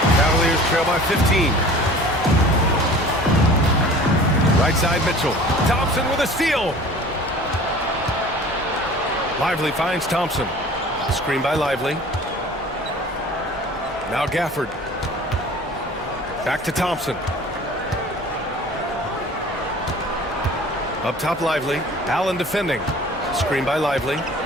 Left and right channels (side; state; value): both; normal; correlation 0.44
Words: Cavaliers trail by 15. Right side, Mitchell. Thompson with a steal. Lively finds Thompson. Screen by Lively. Now Gafford. Back to Thompson. Up top, Lively. Allen defending. Screen by Lively.